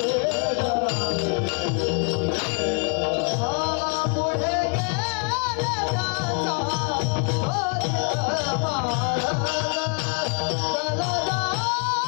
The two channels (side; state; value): right; quieter; 36.2 dB